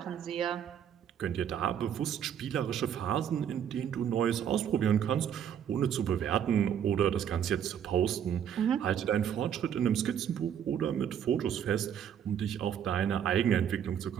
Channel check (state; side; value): quieter; left; 9.0 dB